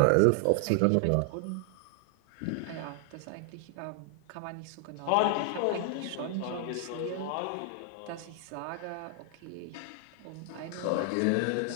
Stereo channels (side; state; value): both; different; correlation 0.00